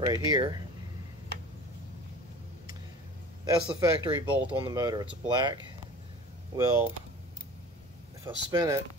here. That's the factory bolt on the motor. It's black. Well, if I spin it,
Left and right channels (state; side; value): normal; both; correlation 0.40